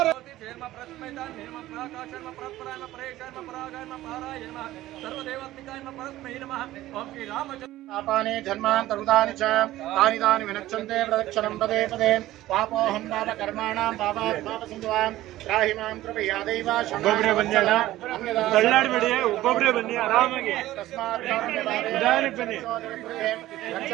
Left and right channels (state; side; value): quieter; left; 15.5 dB